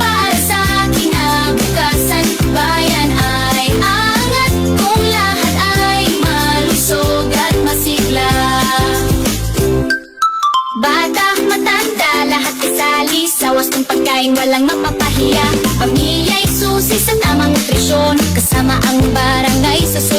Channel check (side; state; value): both; identical; correlation 1.00